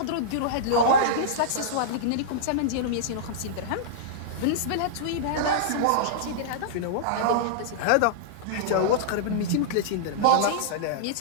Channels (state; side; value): different; both; correlation -0.03